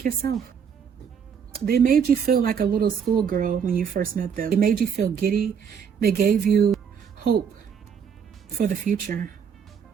yourself. They made you feel like a little schoolgirl when you first met them. They made you feel giddy. They gave you hope for the future.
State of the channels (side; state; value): left; quieter; 7.2 dB